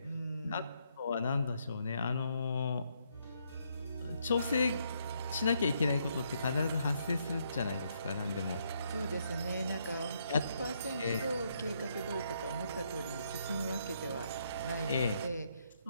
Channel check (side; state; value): both; inverted; correlation -0.74